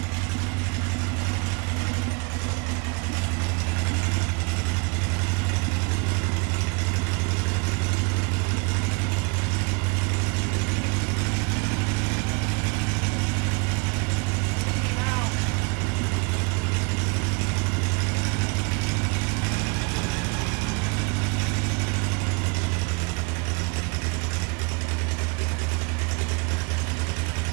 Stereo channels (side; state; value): left; quieter; 31.2 dB